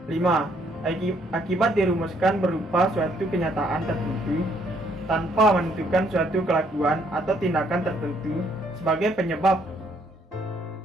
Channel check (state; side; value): normal; both; correlation 0.68